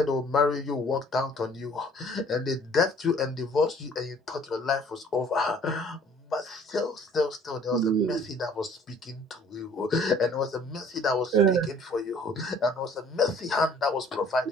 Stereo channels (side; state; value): both; normal; correlation 0.55